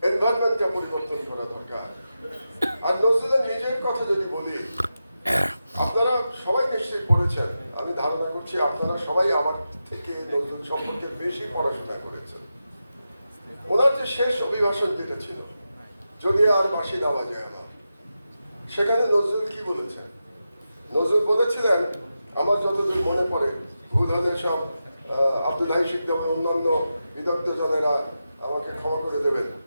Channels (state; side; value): inverted; both; correlation -0.90